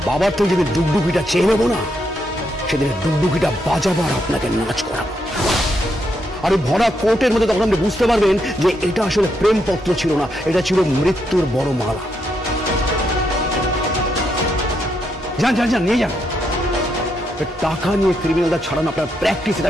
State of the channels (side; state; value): both; normal; correlation 0.79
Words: বাবার তো যেদিন ডুগডুগিটা চেয়ে নেবো না, সেদিন ডুগডুগিটা বাজাবো আর আপনাকে নাচ করাবো। আর ওই ভরা কোর্টের মধ্যে তখন আপনি বুঝতে পারবেন যে এটা আসলে প্রেমপত্র ছিল না, এটা ছিল মৃত্যুর বড় মালা। যান যান যান, নিয়ে যান। টাকা নিয়ে ক্রিমিনালরা ছাড়ানো আপনার প্র্যাকটিস, এটা